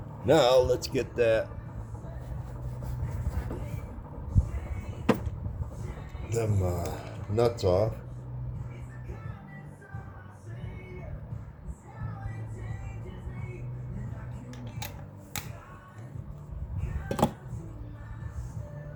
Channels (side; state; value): both; identical; correlation 1.00